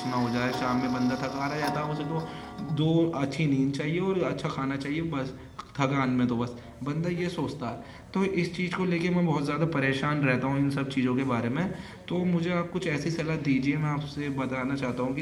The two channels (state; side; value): identical; both; correlation 1.00